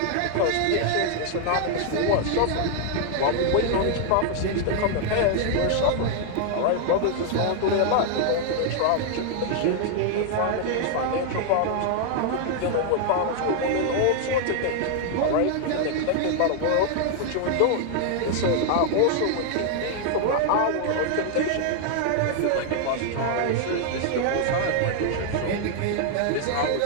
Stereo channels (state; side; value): different; both; correlation 0.00